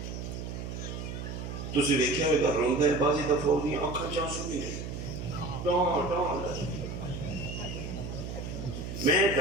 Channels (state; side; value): noise; right; hum, 6 dB below the sound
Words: تسی ویکھیا ہوئے گا روندہ ہے بازی دفعہ ہو گئی آنکھاں چانسو بھی نہیں ٹان ٹان میں